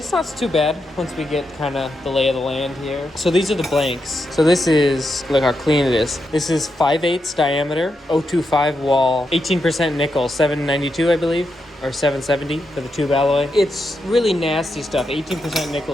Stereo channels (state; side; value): normal; both; correlation 0.85